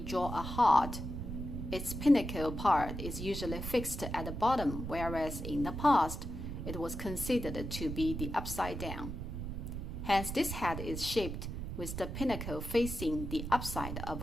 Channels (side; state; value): right; noise; rumble, 6 dB below the sound